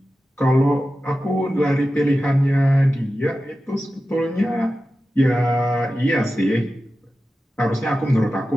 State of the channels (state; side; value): normal; both; correlation 0.93